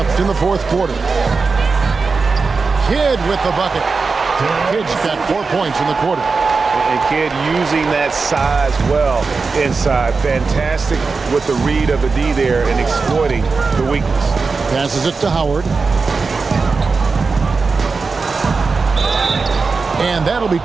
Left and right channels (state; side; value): quieter; left; 4.5 dB